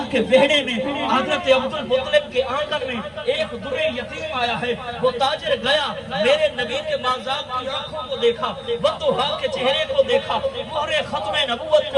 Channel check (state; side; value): identical; both; correlation 1.00